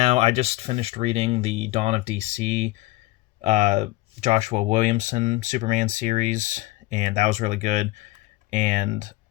I just finished reading the Dawn of DC uh, Joshua Williamson Superman series, and that was really good. And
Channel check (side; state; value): right; quieter; 19.5 dB